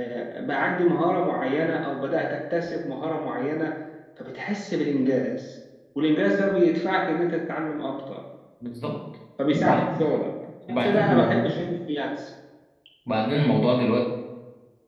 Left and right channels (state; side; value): identical; both; correlation 1.00